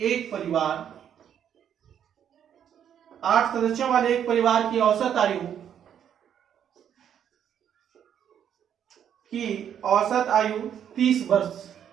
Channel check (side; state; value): left; quieter; 9.2 dB